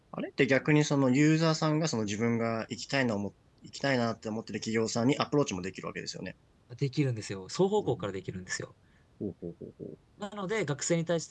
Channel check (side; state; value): both; identical; correlation 1.00